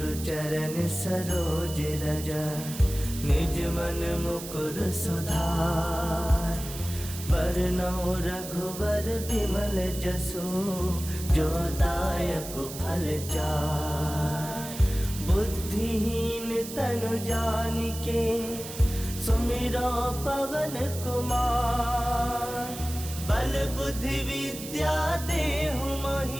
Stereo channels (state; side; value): noise; right; hiss, 11 dB below the sound